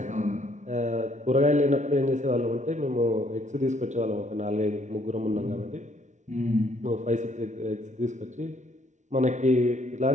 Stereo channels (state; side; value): late; left; 0.35 ms